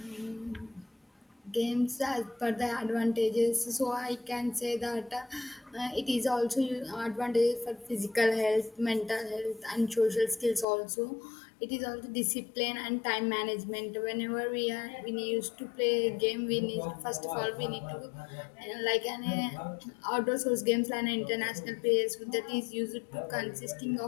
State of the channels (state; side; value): drops out; right; at 10.7 s